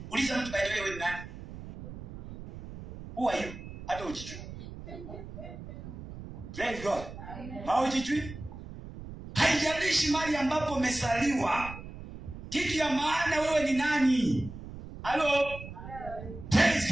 Uliza mtu by the way, wewe ni nani? Who are you? Hata ujijui. Praise God. Haujijui? Haijalishi mahali ambapo umezaliwa, kitu ya maana wewe ni nani. Hello? Praise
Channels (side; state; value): right; noise; rumble, 12 dB below the sound